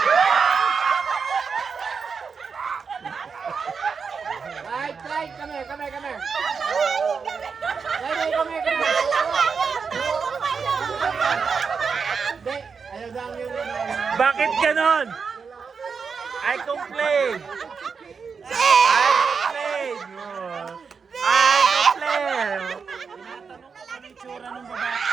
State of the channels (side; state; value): left; quieter; 5.6 dB